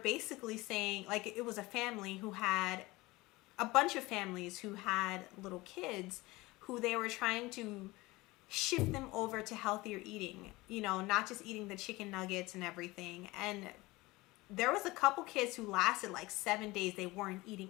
saying, like, it was a family who had a bunch of families who had little kids who they were trying to shift them over to healthier eating, not just eating the chicken nuggets and everything. And there was a couple kids who lasted like 7 days. They weren't eating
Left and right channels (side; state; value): right; quieter; 21.1 dB